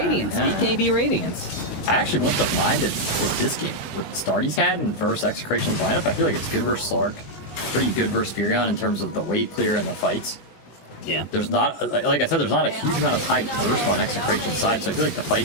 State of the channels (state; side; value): late; right; 19 ms